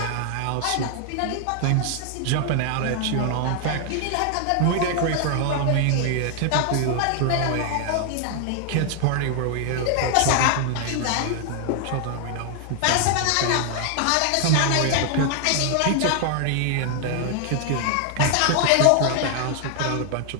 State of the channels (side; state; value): both; different; correlation 0.00